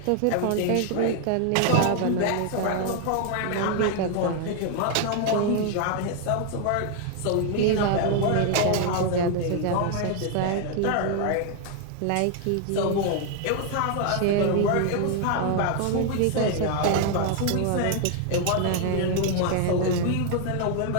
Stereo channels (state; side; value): different; both; correlation 0.00